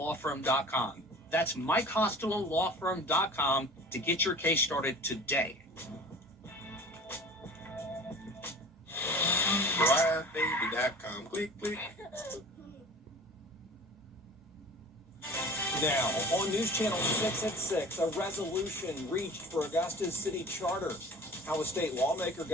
That's MikeHostelowLawFirm.com to get your case started today. BriarBaby.com. Click, click. Now, on News Channel 6 at 6, a resolution reached for Augusta's city charter. How a state lawmaker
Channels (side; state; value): both; normal; correlation 0.41